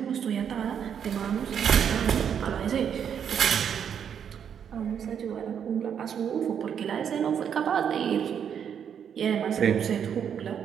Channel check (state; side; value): quieter; left; 8.1 dB